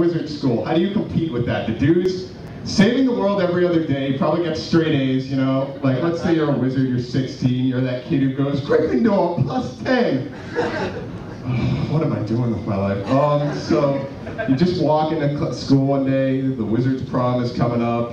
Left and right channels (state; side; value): identical; both; correlation 1.00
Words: school. How do you compete with that? The dude's saving the world every other day, probably gets straight A's, you know? Like, let's say you're a wizard, you're 16, you're that kid who goes, Gryffindor, +10! What am I doing with my life? So, you just walk into school one day, the wizard's prom is coming